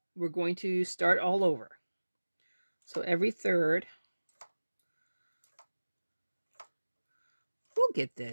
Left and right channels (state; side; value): inverted; both; correlation -1.00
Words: We're going to start all over. So every third, we'll get